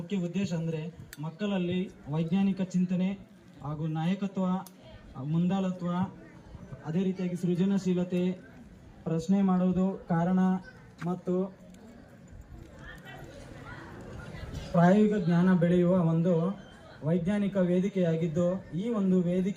ಉದ್ದೇಶ ಅಂದರೆ ಮಕ್ಕಳಲ್ಲಿ ವೈಜ್ಞಾನಿಕ ಚಿಂತನೆ ಹಾಗೂ ನಾಯಕತ್ವ, ಮುಂದಾಳತ್ವ, ಅದೇ ರೀತಿಯಾಗಿ ಸೃಜನಶೀಲತೆ, ಪ್ರಶ್ನೆ ಮಾಡುವುದು, ಕಾರಣ ಮತ್ತು ಪ್ರಾಯೋಗಿಕ ಜ್ಞಾನ ಬೆಳೆಯುವ ಒಂದು ವೈಜ್ಞಾನಿಕ ವೇದಿಕೆಯಾಗಿದ್ದು, ಈ ಒಂದು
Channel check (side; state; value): both; identical; correlation 1.00